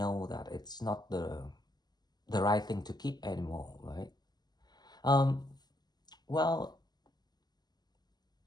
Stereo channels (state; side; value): late; right; 0.20 ms